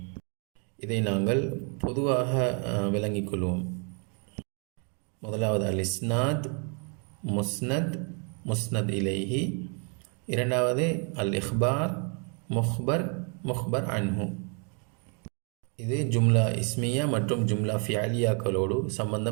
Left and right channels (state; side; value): quieter; left; 38.2 dB